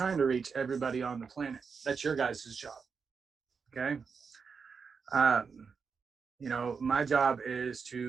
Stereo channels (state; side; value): quieter; left; 5.6 dB